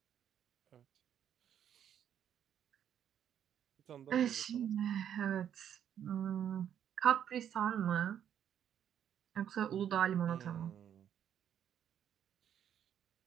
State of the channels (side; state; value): left; quieter; 9.5 dB